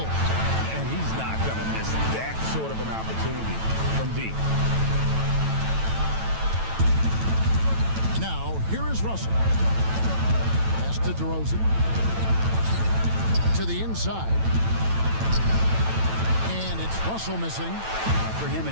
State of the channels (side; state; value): left; late; 9.1 ms